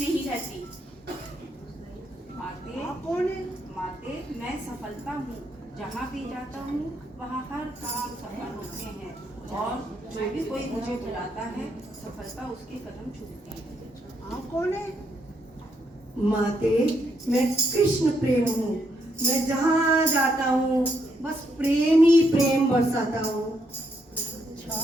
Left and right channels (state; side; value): normal; both; correlation 0.76